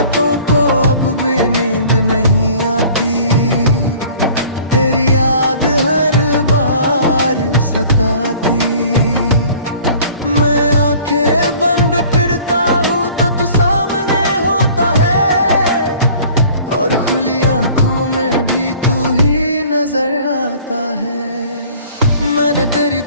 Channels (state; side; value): inverted; both; correlation -0.50